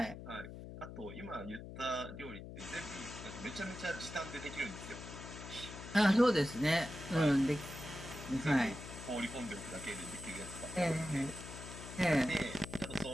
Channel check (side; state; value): left; noise; hum, 11 dB below the sound